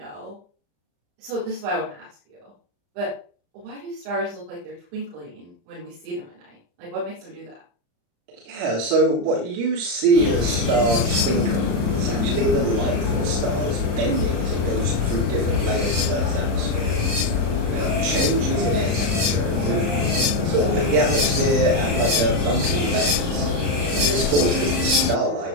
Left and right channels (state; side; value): late; left; 34 ms